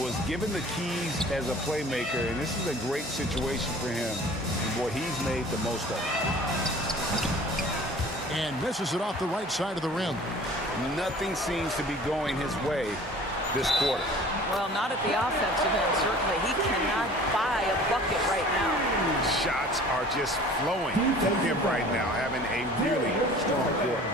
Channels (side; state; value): both; normal; correlation 0.46